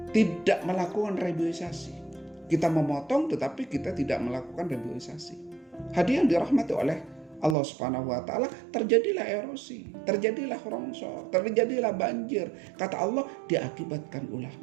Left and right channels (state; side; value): drops out; left; at 7.6 s